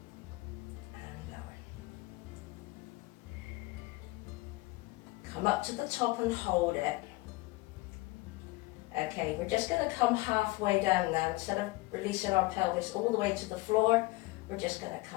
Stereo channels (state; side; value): quieter; right; 21.5 dB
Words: and lower. Come up to the top and hold it. Okay, we're just going to come halfway down now. Instead of releasing our pelvis all the way to the floor, we're just going to